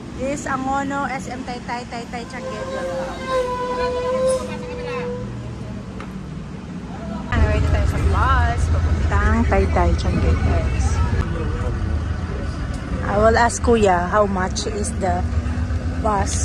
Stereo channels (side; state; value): both; identical; correlation 1.00